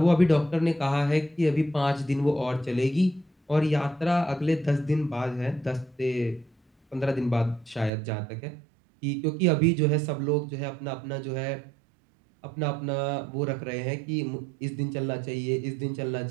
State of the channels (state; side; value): drops out; left; at 7.9 s